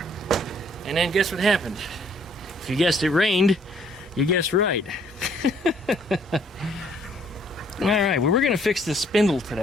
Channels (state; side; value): normal; both; correlation 0.63